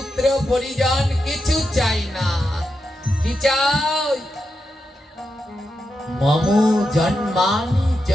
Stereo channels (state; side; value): normal; both; correlation 0.87